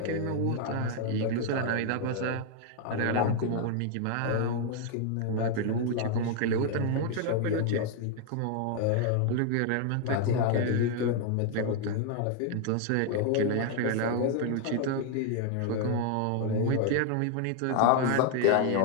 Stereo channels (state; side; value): different; both; correlation 0.00